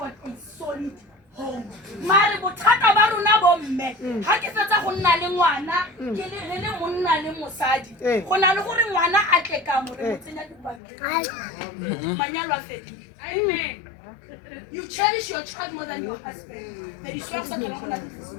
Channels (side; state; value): right; drops out; at 10.8 s